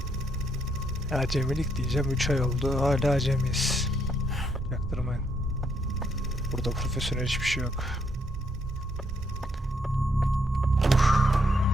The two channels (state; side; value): normal; both; correlation 0.73